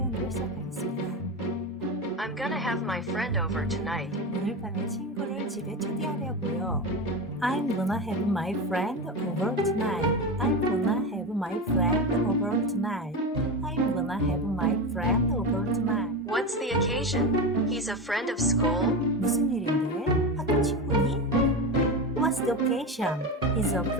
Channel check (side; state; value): both; normal; correlation 0.20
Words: 시작하겠습니다. I'm gonna have my friend over tonight. 오늘 밤에 친구를 집에 초대하려고요. I'm gonna have my friend over tonight. I'm gonna have my friend over tonight. I'm gonna have my friend over tonight. What's the occasion? He's a friend of school? 무슨 일인데? 학교 친구니? What's the occasion? Is a